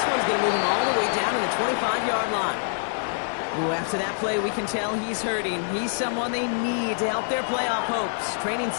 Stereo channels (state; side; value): silent; right; 56 dB below the other